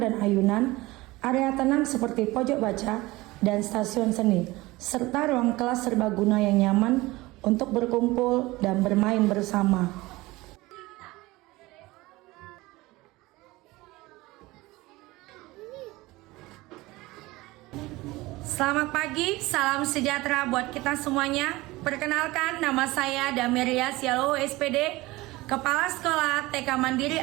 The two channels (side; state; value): left; quieter; 20.3 dB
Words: dan ayunan, area tenang seperti pojok baca dan stasiun seni, serta ruang kelas serbaguna yang nyaman untuk berkumpul dan bermain bersama. Selamat pagi, salam sejahtera buat kita semuanya. Perkenalkan, nama saya Damiria Sialo SPD, Kepala Sekolah TK Mandiri